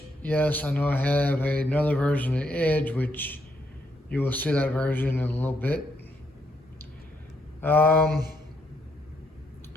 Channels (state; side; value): normal; both; correlation 0.75